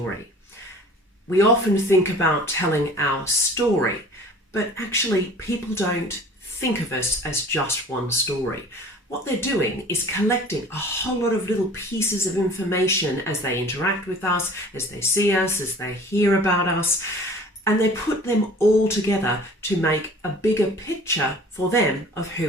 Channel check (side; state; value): both; normal; correlation 0.46